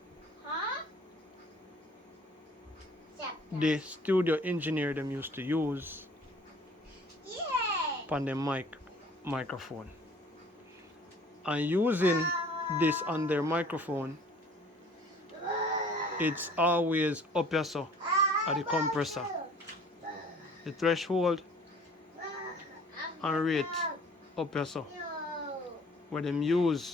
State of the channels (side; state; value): both; normal; correlation 0.52